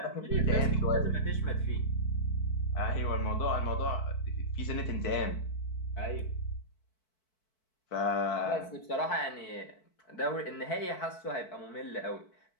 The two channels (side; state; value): right; late; 4.6 ms